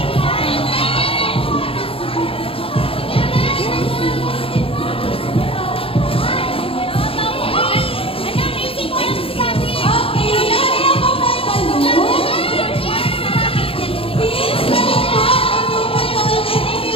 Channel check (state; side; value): late; right; 0.27 ms